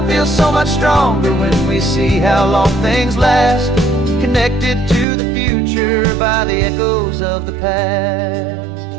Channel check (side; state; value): left; drops out; at 5.1 s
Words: feels so much stronger when we see how long things last, connected to the future by the echoes of the past.